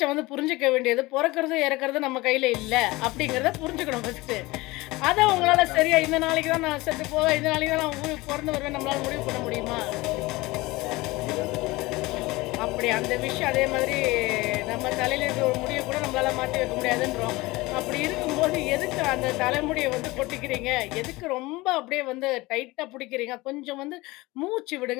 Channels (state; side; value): quieter; right; 21.2 dB